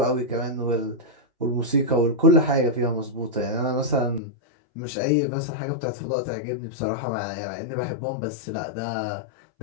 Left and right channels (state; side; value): drops out; right; at 4.2 s